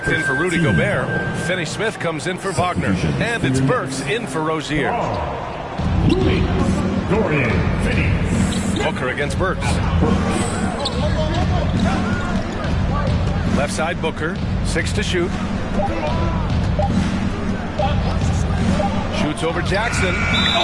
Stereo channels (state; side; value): identical; both; correlation 1.00